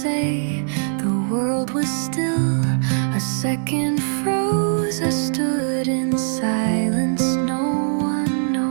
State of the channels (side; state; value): left; silent; digital silence